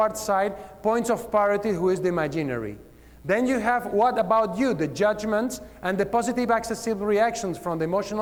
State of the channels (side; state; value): both; identical; correlation 1.00